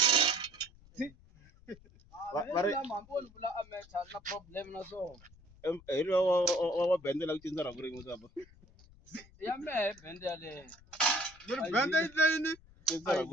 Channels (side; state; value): left; noise; rumble, 25 dB below the sound